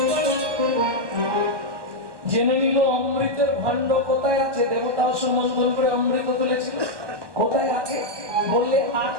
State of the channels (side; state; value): left; late; 1.2 ms